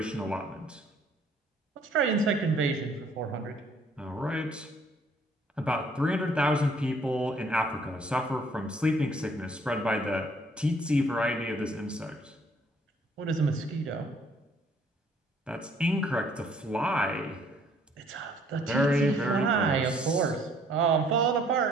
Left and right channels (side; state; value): both; normal; correlation 0.61